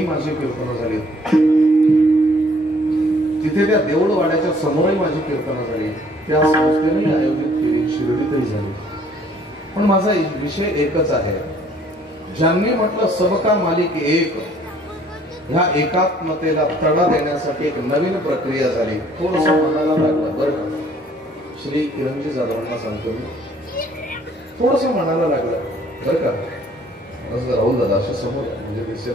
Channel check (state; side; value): normal; both; correlation 0.59